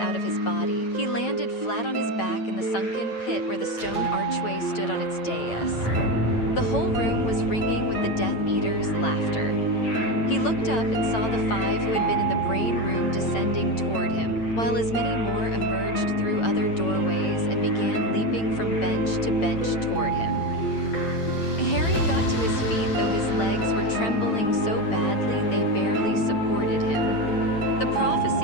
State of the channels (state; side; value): late; right; 9.0 ms